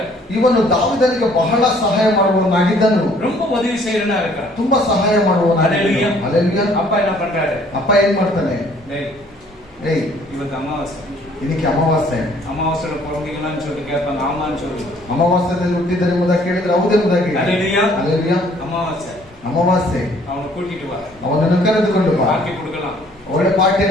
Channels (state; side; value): normal; both; correlation 0.59